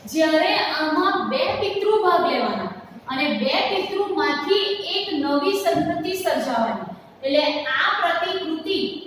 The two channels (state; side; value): identical; both; correlation 1.00